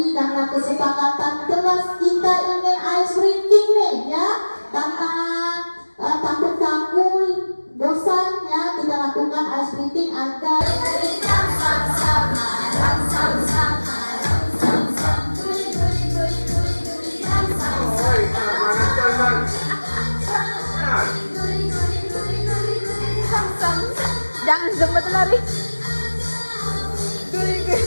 karena kesepakatan kelas kita ingin ice breaking nih, ya. Karena takut kamu bosan, ya, kita lakukan ice breaking agar Jangan sempat lari.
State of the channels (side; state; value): both; inverted; correlation -1.00